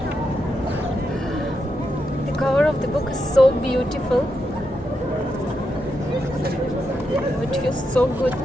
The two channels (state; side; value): normal; both; correlation 0.84